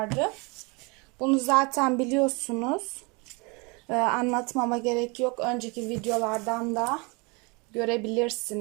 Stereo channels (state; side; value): quieter; left; 29.4 dB